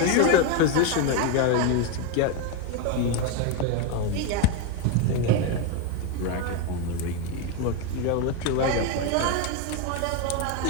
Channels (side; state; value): both; different; correlation 0.02